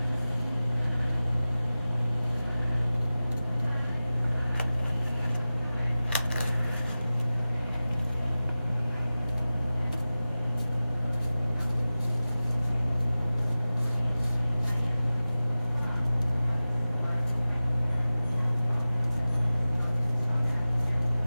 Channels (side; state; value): both; inverted; correlation -0.96